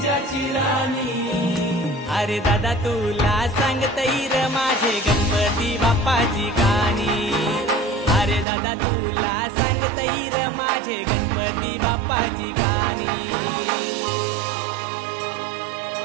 ज्याची राणी अरे दादा तुला सांगतैर माझे गणपती बाप्पाची गाणी अरे दादा तुला सांगतैर माझे गणपती बाप्पाची गाणी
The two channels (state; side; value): drops out; left; at 8.5 s